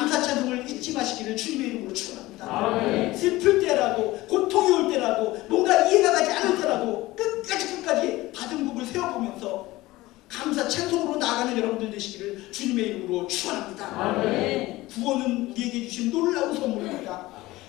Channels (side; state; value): right; quieter; 18.6 dB